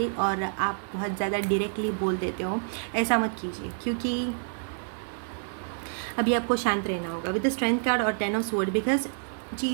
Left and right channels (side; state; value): left; silent; 59 dB below the other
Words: और आप बहुत ज़्यादा डायरेक्टली बोल देते हो। ऐसा मत कीजिए, क्योंकि अभी आपको शांत रहना होगा विद द स्ट्रेंथ कार्ड और 10 ऑफ स्वॉर्ड, बिकॉज